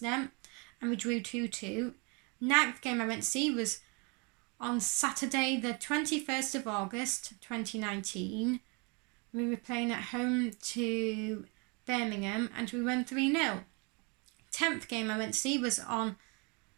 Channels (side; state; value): left; quieter; 31.9 dB